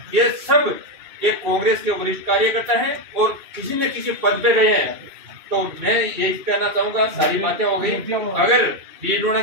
ये सब एक कांग्रेस के वरिष्ठ कार्यकर्ता हैं और किसी न किसी पद पे रहे हैं। तो मैं यही कहना चाहूंगा, सारी बातें हो गई। अगर डीडोना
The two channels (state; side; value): late; left; 2.6 ms